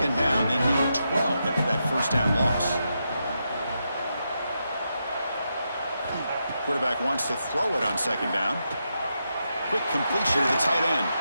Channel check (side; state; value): both; inverted; correlation -0.85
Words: down. They need 12 after that 1st down loss. Quarterback wants to throw it on 2nd down. Quick completion to the tight end.